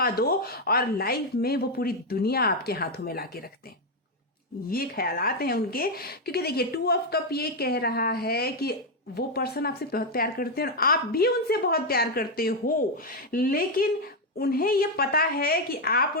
दो और लाइफ में वो पूरी दुनिया आपके हाथों में लाके रख दें। ये ख्यालात हैं उनके, क्योंकि देखिए 2 ऑफ कप ये कह रहा है कि वो पर्सन आपसे बहुत प्यार करते हैं और आप भी उनसे बहुत प्यार करते हो, लेकिन उन्हें ये पता है कि आप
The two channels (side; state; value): both; normal; correlation 0.03